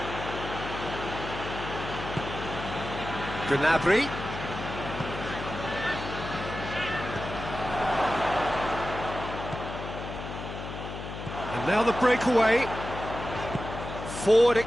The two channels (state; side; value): noise; left; hum, 8 dB below the sound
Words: Gnabry. And now the breakaway. Forward